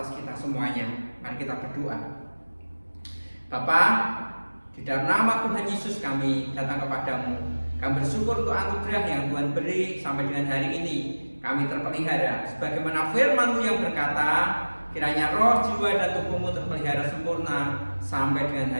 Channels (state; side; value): inverted; both; correlation -1.00